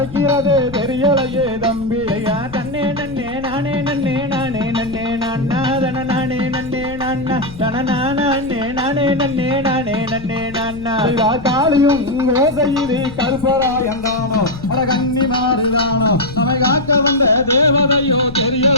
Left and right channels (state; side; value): noise; left; rumble, 16 dB below the sound